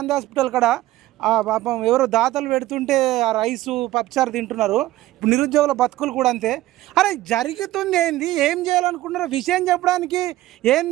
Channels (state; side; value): quieter; left; 16.1 dB